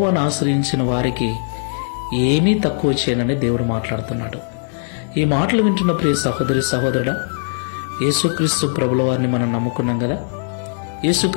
ఆశ్రయించిన వారికి ఏమీ తక్కువ చేయనని దేవుడు మాట్లాడుతున్నాడు. ఈ మాటలు వింటున్న ప్రియ సహోదరి సహోదరుడా, యేసుక్రీస్తు ప్రభుల వారిని మనం నమ్ముకున్నాం కదా,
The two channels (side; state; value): right; silent; 59 dB below the other